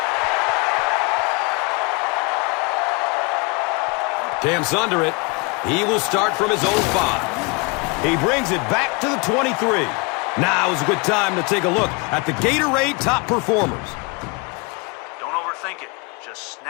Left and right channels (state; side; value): quieter; right; 29.4 dB